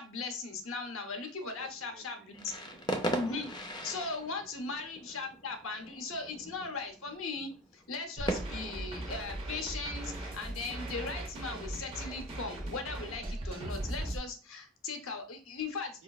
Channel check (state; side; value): normal; both; correlation 0.34